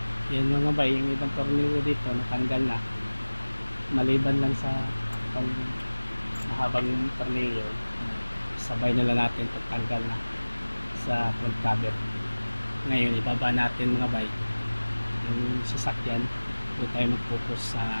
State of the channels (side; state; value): both; inverted; correlation -1.00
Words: Yan mga bay, yung ibang tornilyo dito natanggal na. Maliban lang sa itong mahabang tornilyo, sabay na lang natin pagtanggal na sa front cover. Ngayon ibaba natin mga bay yung sasakyan, doon tayo mag-focus